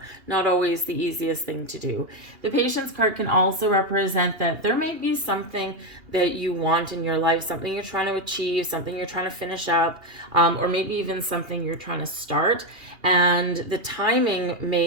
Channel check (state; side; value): late; left; 2.8 ms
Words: Not always the easiest thing to do. The patience card can also represent that there may be something that you want in your life, something you're trying to achieve, something you're trying to finish up, or maybe even something you're trying to start, and the timing